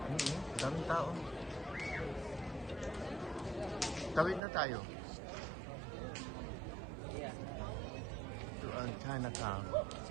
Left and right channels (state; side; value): drops out; left; at 4.4 s